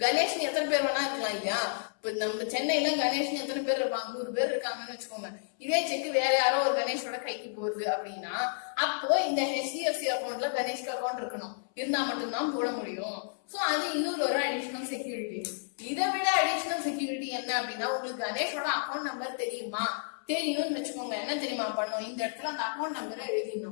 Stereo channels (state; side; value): silent; right; 57 dB below the other